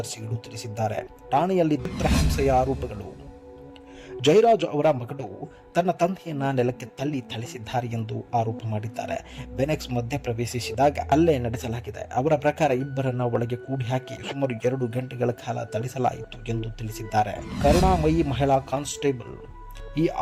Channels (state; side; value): identical; both; correlation 1.00